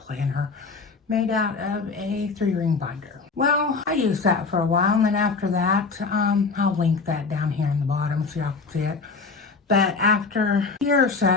made out of a 3-ring binder. Well, I used that for a while, and then after that, I'll link that down here in the bottom so y'all can see it. But after a year or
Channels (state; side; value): quieter; right; 4.5 dB